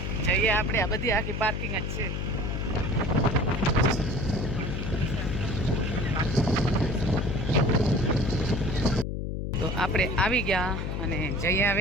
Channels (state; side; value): noise; left; hum, 3 dB below the sound